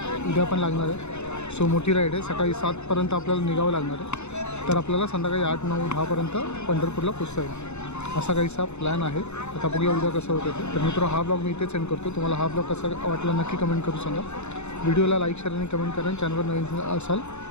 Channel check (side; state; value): right; late; 0.82 ms